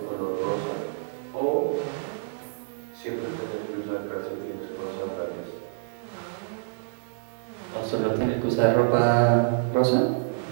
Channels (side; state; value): left; silent; digital silence